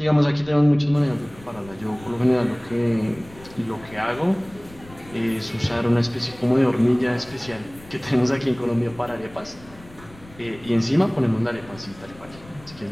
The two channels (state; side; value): noise; left; rumble, 21 dB below the sound